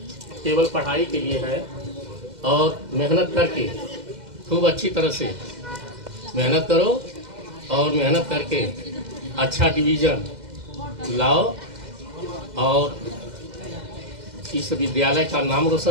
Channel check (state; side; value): late; left; 2.0 ms